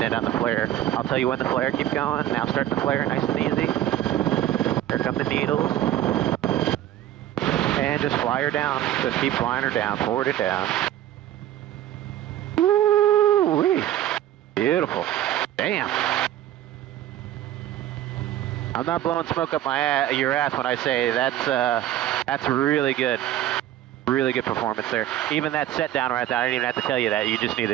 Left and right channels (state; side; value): quieter; left; 12.6 dB